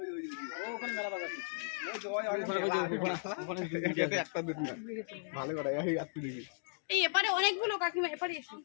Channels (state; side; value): silent; right; digital silence